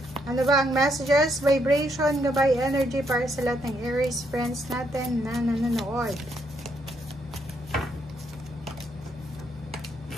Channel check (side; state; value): both; normal; correlation 0.75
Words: Ano ba ang messages, vibration, gabay, energy para sa lahat ng Aries friends natin na nanonood?